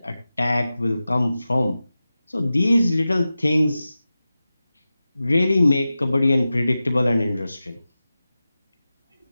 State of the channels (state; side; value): inverted; both; correlation -0.94